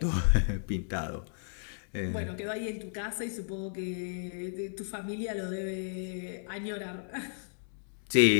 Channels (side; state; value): right; silent; digital silence